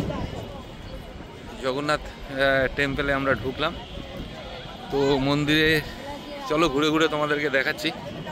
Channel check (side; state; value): both; identical; correlation 1.00